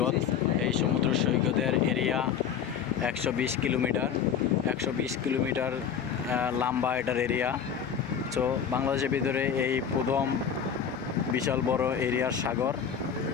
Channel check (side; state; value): right; quieter; 7.8 dB